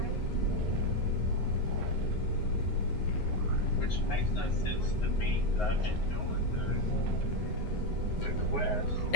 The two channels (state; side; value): late; right; 9.5 ms